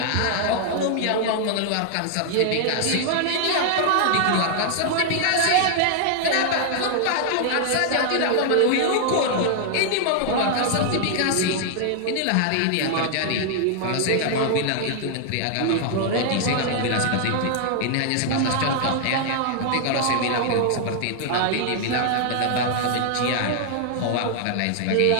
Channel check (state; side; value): different; both; correlation 0.00